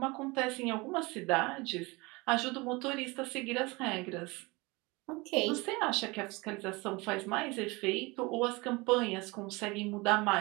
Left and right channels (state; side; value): quieter; left; 24.7 dB